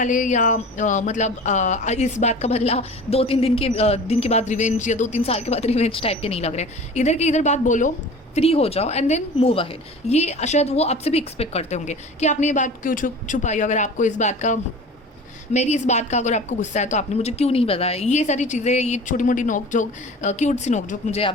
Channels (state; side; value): normal; both; correlation 0.39